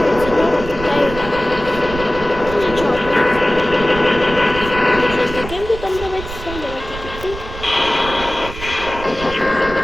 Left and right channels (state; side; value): noise; right; rumble, 11 dB below the sound